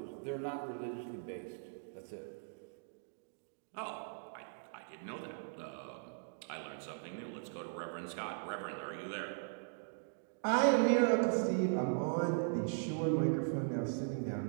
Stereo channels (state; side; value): silent; left; digital silence